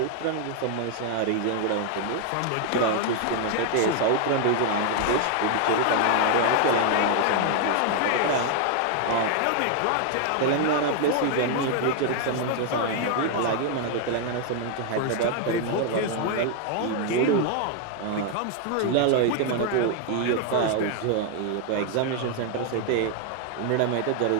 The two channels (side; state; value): both; different; correlation 0.00